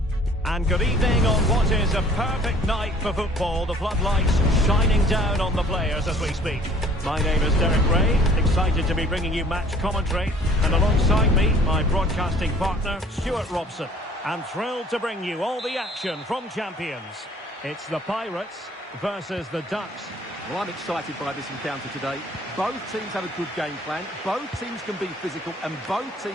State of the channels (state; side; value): normal; both; correlation 0.54